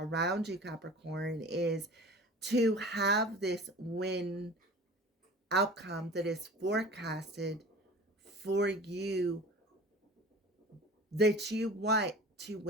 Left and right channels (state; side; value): normal; both; correlation 0.40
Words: you, Capricorn, is to have this win outcome that is forecasted for you, that you want to